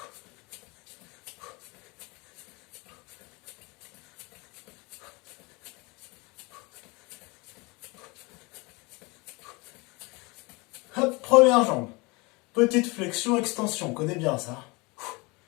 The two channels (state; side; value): quieter; right; 26.3 dB